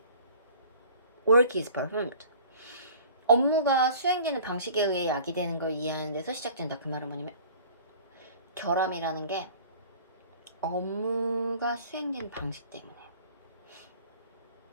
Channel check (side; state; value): both; inverted; correlation -0.47